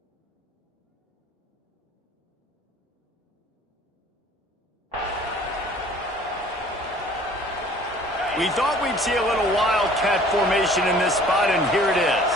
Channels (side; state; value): both; normal; correlation 0.52